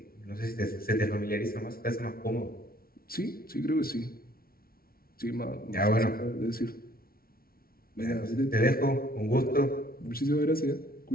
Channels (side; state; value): right; late; 0.43 ms